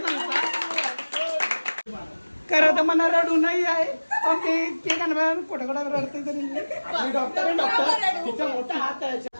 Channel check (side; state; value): both; inverted; correlation -1.00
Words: सांगता खरं तर मला रडू नाही आहे, पण ते केक आणणार कुठं कुठं रडते तरी. डॉक्टर आहे, डॉक्टर तिचा मोठा हात आहे.